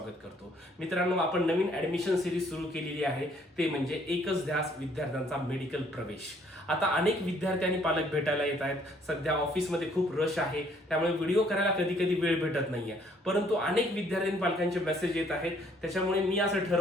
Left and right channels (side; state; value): both; normal; correlation 0.63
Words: करतो. मित्रांनो, आपण नवीन ऍडमिशन सिरीज सुरू केलेली आहे, ते म्हणजे एकच ध्यास विद्यार्थ्यांचा मेडिकल प्रवेश. आता अनेक विद्यार्थी आणि पालक भेटायला येत आहेत. सध्या ऑफिसमध्ये खूप रश आहे, त्यामुळे व्हिडिओ करायला कधी कधी वेळ भेटत नाहीये. परंतु अनेक विद्यार्थी आणि पालकांचे मेसेज येत आहेत, त्याच्यामुळे मी असं